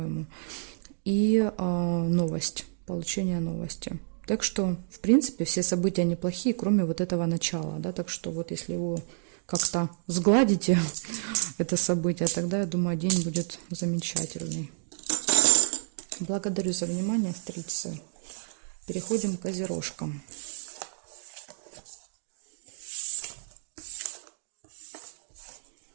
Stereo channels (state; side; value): silent; left; digital silence